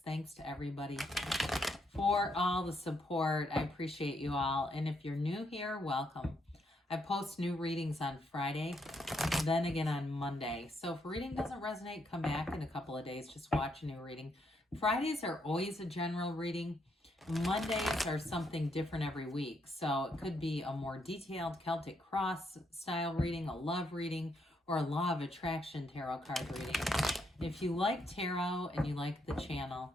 Thanks to everybody for all the support. I appreciate you all. And if you're new here, welcome. I post new readings on Friday, then again on Monday. So if a reading doesn't resonate, come back in a couple of days. Just watch a new reading. Fridays are always a general reading. Mondays are something different every week. So it could be a more detailed Celtic Cross style reading, a love reading, or a Law of Attraction tarot card reading. If you like tarot and you like the channel,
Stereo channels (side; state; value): both; normal; correlation 0.76